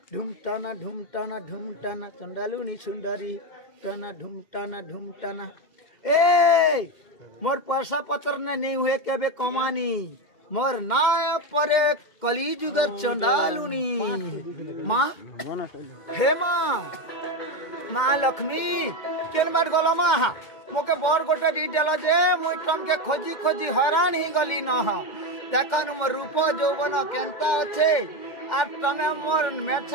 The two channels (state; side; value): late; right; 2.1 ms